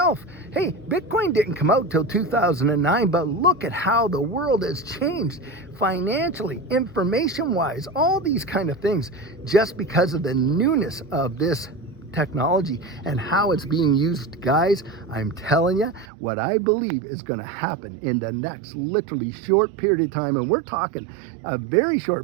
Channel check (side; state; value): left; drops out; at 16.1 s